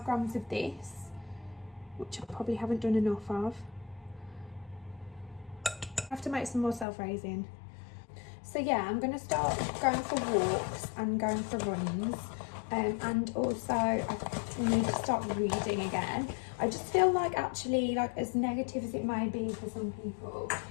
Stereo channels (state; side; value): drops out; right; at 6.9 s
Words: grams of this, which I probably haven't done enough of. I have to make some more self-raising. So yeah, I'm going to start going for walks and going for runs. And also I need to start reading again. I just feel like actually, like, as negative as it may be for some people,